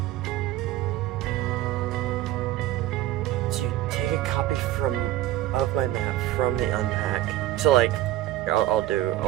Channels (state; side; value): quieter; left; 14.6 dB